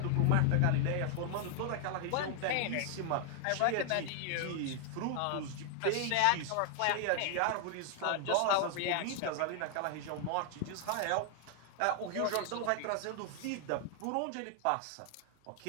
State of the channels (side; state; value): both; different; correlation 0.00